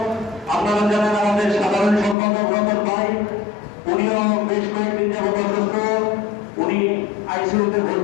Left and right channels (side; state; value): right; drops out; at 2.1 s